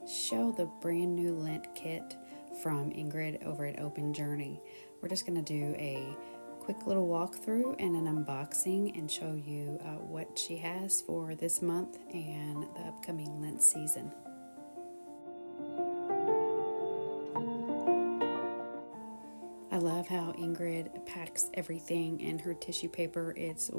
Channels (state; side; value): inverted; both; correlation -1.00